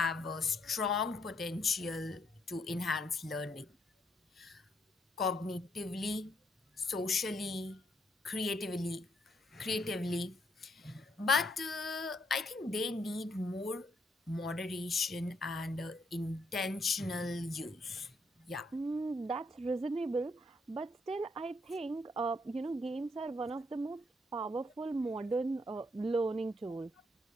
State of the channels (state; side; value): normal; both; correlation 0.73